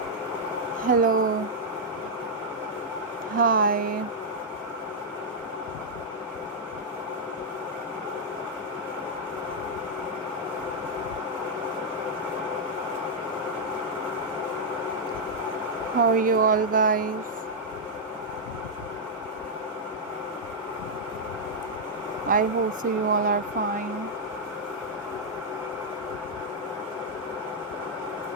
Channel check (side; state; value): both; normal; correlation -0.05